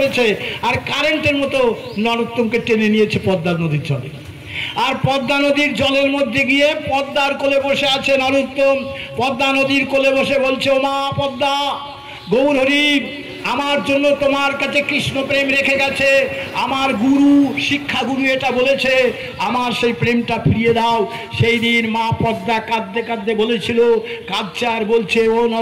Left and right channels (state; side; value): identical; both; correlation 1.00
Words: আর কারেন্টের মতো নরোত্তমকে টেনে নিয়েছে পদ্মা নদীর জলে। আর পদ্মা নদীর জলের মধ্যে গিয়ে পদ্মার কোলে বসে আছে নরোত্তম। পদ্মা নদীর কোলে বসে বলছে, ও মা পদ্মা, গৌর হরি আমার জন্য তোমার কাছে কৃষ্ণ প্রেম রেখে গেছে, আমার গুরু শিক্ষা গুরু এটা বলেছে, আমার সেই প্রেমটা ফিরিয়ে দাও। সেই দিন মা পদ্মা কাঁদতে কাঁদতে বলেছিল, কাঁদছে আর বলছে, ও